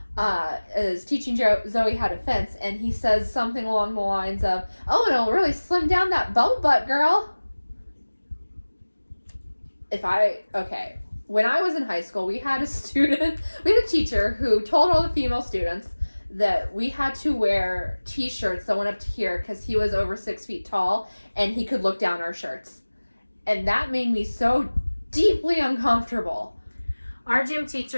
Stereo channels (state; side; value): inverted; both; correlation -1.00